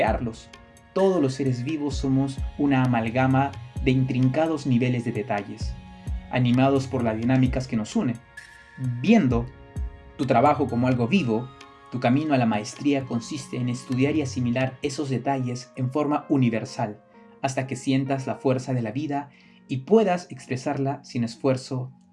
Todos los seres vivos somos una amalgama de intrincados niveles de detalles, animados por las dinámicas que nos unen. Viendo tu trabajo como algo vivo, tu camino a la maestría consiste en estudiar y asimilar esos detalles en forma universal, hasta que sientas la fuerza de la vida y puedas expresarla sin esfuerzo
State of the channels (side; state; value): both; identical; correlation 1.00